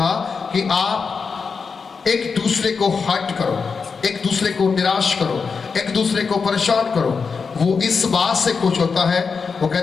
कि आप एक दूसरे को हर्ट करो, एक दूसरे को निराश करो, एक दूसरे को परेशान करो। वो इस बात से खुश होता है, वो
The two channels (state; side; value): quieter; right; 5.3 dB